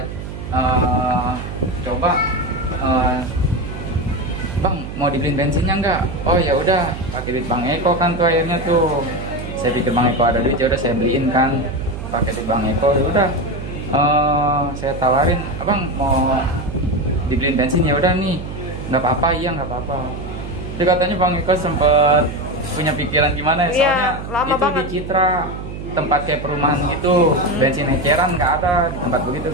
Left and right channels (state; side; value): noise; right; hum, 8 dB below the sound